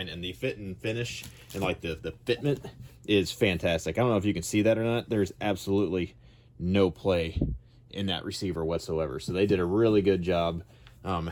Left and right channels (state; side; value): identical; both; correlation 1.00